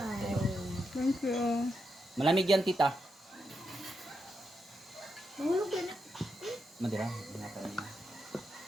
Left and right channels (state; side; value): normal; both; correlation 0.84